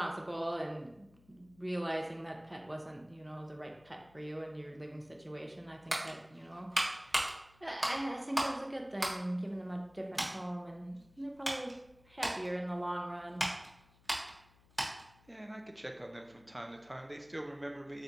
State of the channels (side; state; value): left; noise; hum, 27 dB below the sound